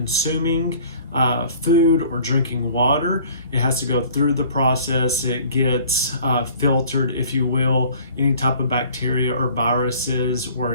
food or drinking water, it has to go through the process. It gets filtered, if you will. Any type of bacteria or viruses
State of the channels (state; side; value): inverted; both; correlation -0.51